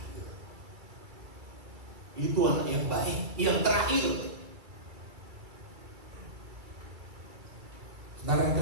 Itu anak yang baik, yang terakhir. Saudara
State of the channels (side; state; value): left; late; 2.3 ms